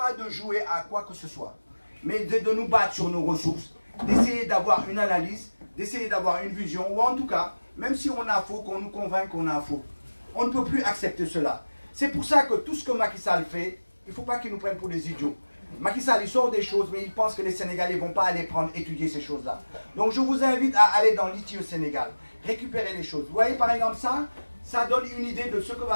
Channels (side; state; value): both; inverted; correlation -1.00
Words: de jouer à quoi que ce soit, mais de nous battre sur nos ressources, d'essayer d'avoir une analyse, d'essayer d'avoir une vision, ou en tout cas, même si on a faux, qu'on nous convainc qu'on a faux. On ne peut plus accepter cela. C'est pour ça que tout ce que Macky Sall fait, il ne faut pas qu'il nous prenne pour des idiots. Macky Sall, il sort des choses, mais il pense que les Sénégalais ne vont pas aller étudier ces choses-là. Donc je vous invite à aller dans l'ITIE Sénégal, récupérer les choses. Vous voyez par exemple ça donne une idée de ce que